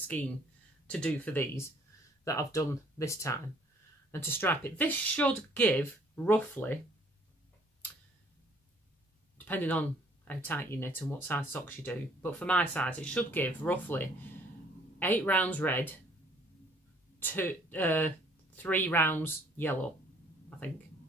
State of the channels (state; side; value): normal; both; correlation 0.60